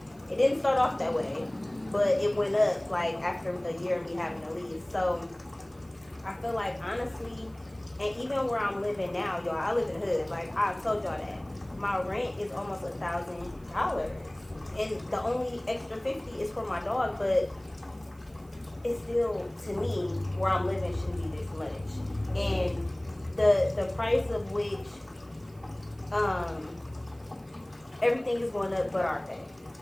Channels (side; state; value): right; noise; hiss, 29 dB below the sound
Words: It didn't start off that way, but it went up like after a year of me having to leave. So I feel like, honestly, and even where I'm living now, y'all, I live in the hood. Like, I told y'all that my rent is almost $1,000, and the only extra $50 is for my dog. But it's still, to me, where I'm living shouldn't be this much. And the price of which everything is going up but our pay.